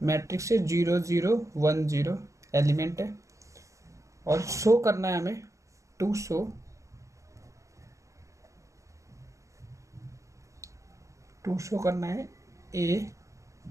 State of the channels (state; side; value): late; left; 0.15 ms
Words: से 0 0 1 0 एलिमेंट है और शो करना है हमें टू शो करना है ए